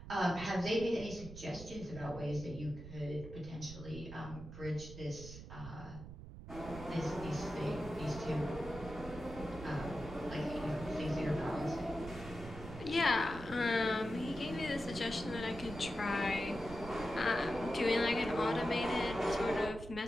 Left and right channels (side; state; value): right; noise; rumble, 12 dB below the sound